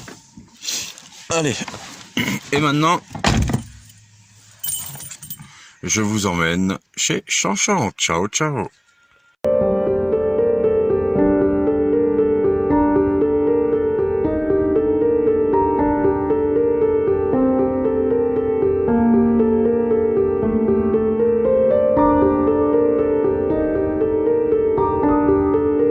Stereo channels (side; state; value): both; identical; correlation 1.00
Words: Allez. Et maintenant, je vous emmène chez Chanchan. Ciao, ciao.